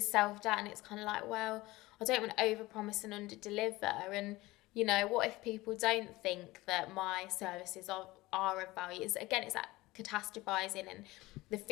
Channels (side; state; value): right; quieter; 19.5 dB